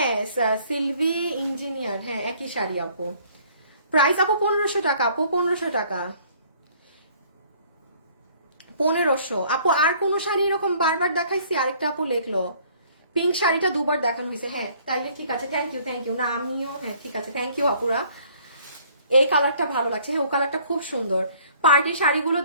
সিলভি ইঞ্জিনিয়ার, হ্যাঁ একই শাড়ি আপু। প্রাইস আপু 1500 টাকা আপু, 1500 টাকা, 1500 আপু। আর কোন শাড়ি এরকম বারবার দেখাইছি? আরেকটা আপু লেখলো পিঙ্ক শাড়িটা দুবার দেখানো হয়েছে। হ্যাঁ তাইলে ঠিক আছে, থ্যাংক ইউ থ্যাংক ইউ। না আমিও, হ্যাঁ ঠিক আছে, থ্যাংক ইউ আপুরা। এই কালারটা ভালো লাগছে, হ্যাঁ ও কালারটা খুব সুন্দর। পার্টি শাড়িগুলো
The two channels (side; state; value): both; inverted; correlation -0.58